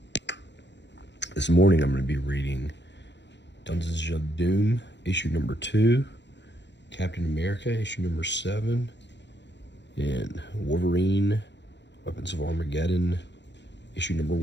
This morning I'm going to be reading Dungeons of Doom, issue number 2, Captain America, issue number 7, and Wolverine, Weapons of Armageddon, issue number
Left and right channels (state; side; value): late; right; 0.52 ms